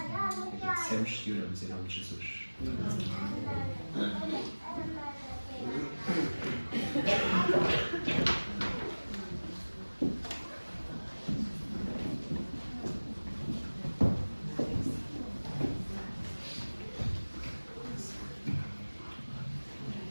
Agradecemos e oramos em nome de Jesus.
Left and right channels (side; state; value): both; inverted; correlation -1.00